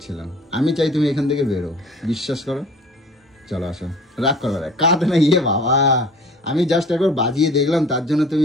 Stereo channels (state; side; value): normal; both; correlation 0.47